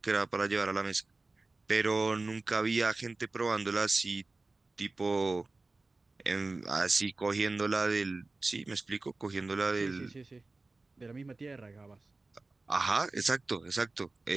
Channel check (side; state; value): left; quieter; 3.4 dB